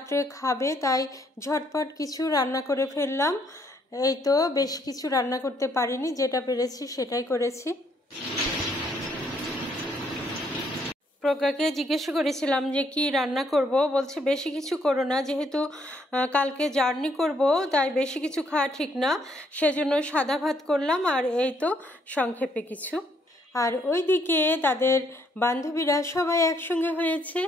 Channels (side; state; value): both; normal; correlation 0.70